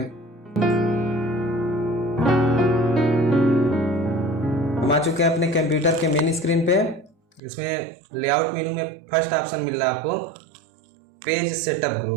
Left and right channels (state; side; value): drops out; left; at 7.4 s